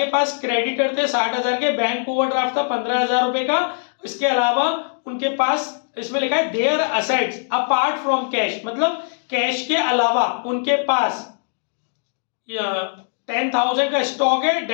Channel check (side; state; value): right; silent; digital silence